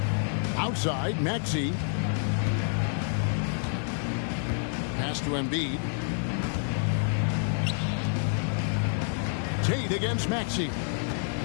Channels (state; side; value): silent; right; digital silence